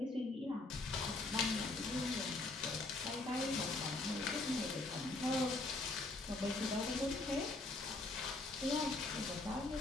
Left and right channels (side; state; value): right; quieter; 3.1 dB